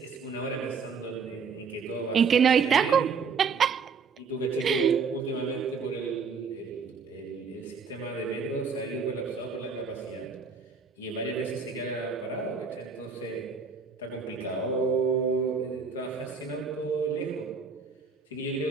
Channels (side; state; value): left; quieter; 5.4 dB